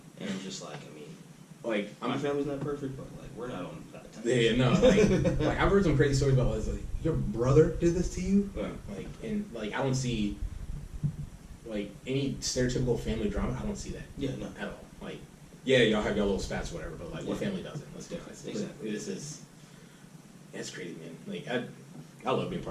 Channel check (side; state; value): both; identical; correlation 1.00